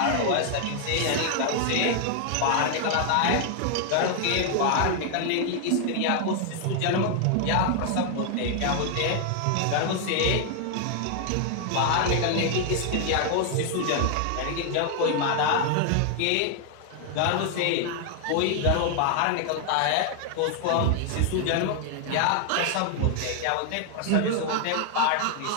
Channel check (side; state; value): both; different; correlation 0.00